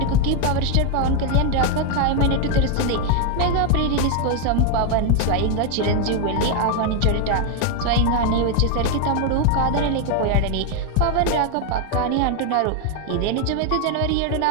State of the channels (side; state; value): both; different; correlation 0.00